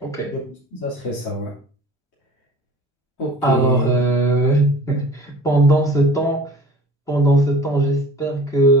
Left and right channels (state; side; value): normal; both; correlation 0.44